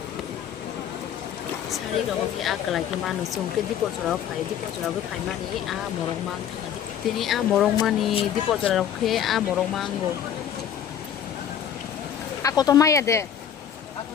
sari rok ki a kelai ki manu sungke di pojora ko phai mani a morong mang tini a morong mani di pojora ke a morong mango ako to maya de Aku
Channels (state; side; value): quieter; right; 9.1 dB